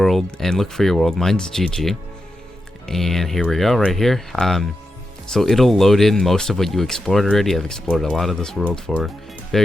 and look for your world. Mine's GG. And here we go, right here. So it'll load in most of what you explored already. I've explored a lot of this world for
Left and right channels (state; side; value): normal; both; correlation 0.88